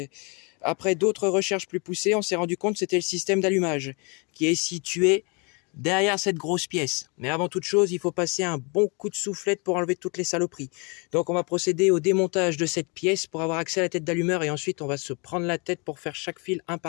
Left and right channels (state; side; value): quieter; right; 32.0 dB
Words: après d'autres recherches plus poussées, on s'est rendu compte que c'était le système d'allumage qui est situé derrière cette grosse pièce. Mais avant toute chose, il faut passer un bon coup de soufflette pour enlever toutes les saloperies. Donc on va procéder au démontage de cette pièce pour avoir accès à la tête d'allumeur et ensuite on va se prendre la tête pour faire chaque fil un